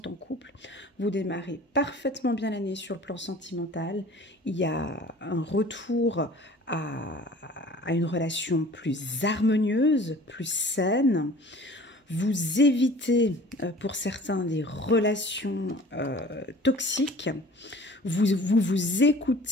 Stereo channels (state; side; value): normal; both; correlation 0.46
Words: en couple, vous démarrez parfaitement bien l'année sur le plan sentimental. Il y a un retour à une relation plus harmonieuse, plus saine. Vous évitez pour certains des relations toxiques. Vous